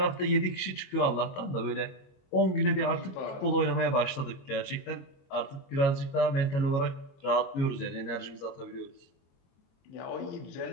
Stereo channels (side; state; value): right; late; 22 ms